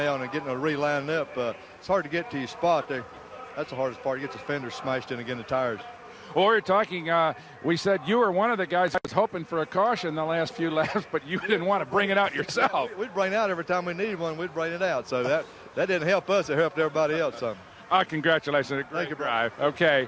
and getting a relined up. It's hard to get to your spot there. That's the hardest part. You get the fenders smashed in again, the tires. Well, we were talking, we said you were one of the guys that was hoping for a caution the last few laps, but you didn't want to bring it out yourself. We'd bring it out every time we needed one. We'd bring it out. So that didn't help us. It helped everybody else some. Congratulations. Thank you, Drive. Okay,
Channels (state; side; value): identical; both; correlation 1.00